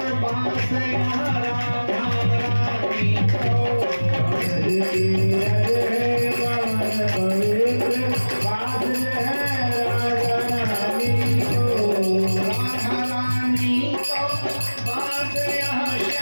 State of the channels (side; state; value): both; inverted; correlation -1.00